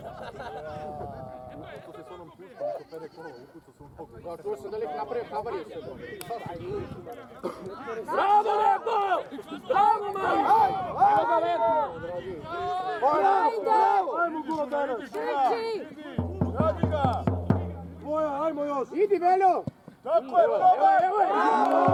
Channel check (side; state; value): both; identical; correlation 1.00